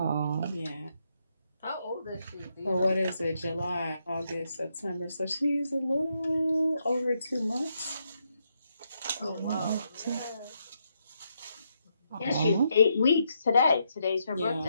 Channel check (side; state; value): both; inverted; correlation -0.79